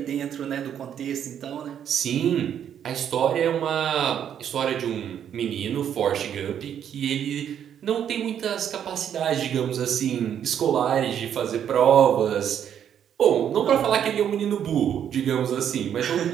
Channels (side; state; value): left; quieter; 9.2 dB